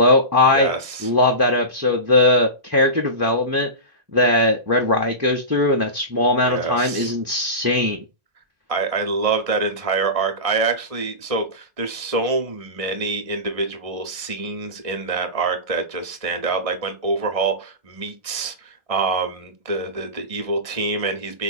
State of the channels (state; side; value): late; left; 1.6 ms